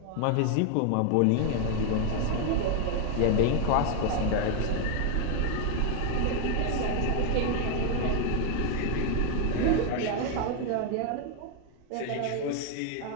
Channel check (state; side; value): different; both; correlation 0.01